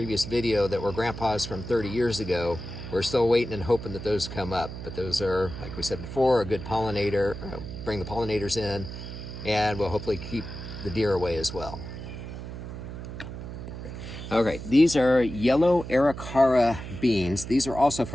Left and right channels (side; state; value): right; noise; hum, 9 dB below the sound